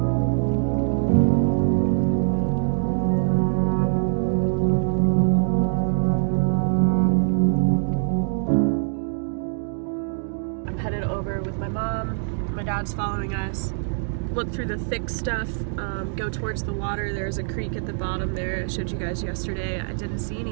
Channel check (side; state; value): left; silent; digital silence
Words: Dad's following us. Look through the thick stuff, go towards the water. There's a creek at the bottom there I showed you guys yesterday. I didn't see